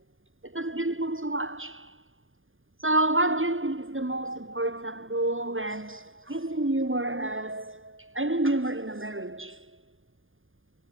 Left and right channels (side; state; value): left; late; 0.59 ms